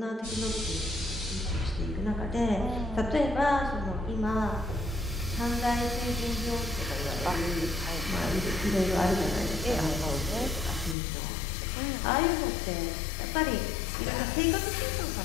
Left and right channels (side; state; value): right; drops out; at 11.0 s